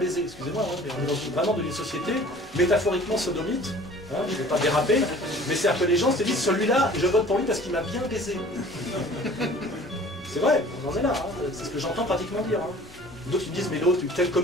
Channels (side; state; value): left; noise; rumble, 25 dB below the sound